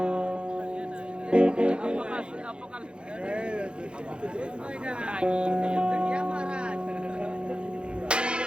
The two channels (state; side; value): late; left; 0.054 ms